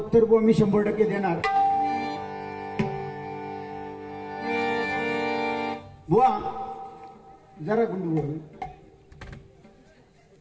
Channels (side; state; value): both; identical; correlation 1.00